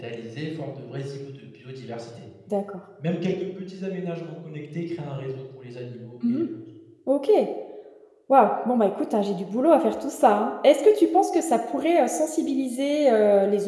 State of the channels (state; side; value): identical; both; correlation 1.00